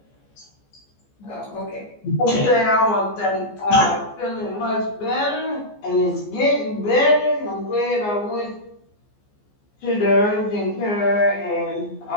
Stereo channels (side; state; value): right; late; 14 ms